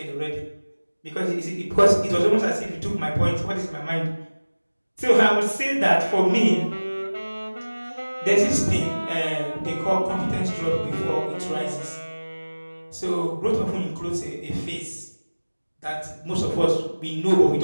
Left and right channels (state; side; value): inverted; both; correlation -1.00